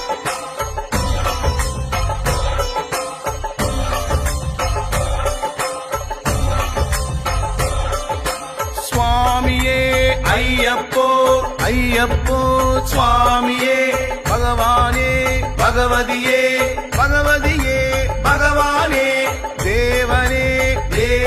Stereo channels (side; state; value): both; identical; correlation 1.00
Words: சுவாமியே ஐயப்போ ஐயப்போ சுவாமியே பகவானே பகவதியே பகவதியே பகவானே தேவனே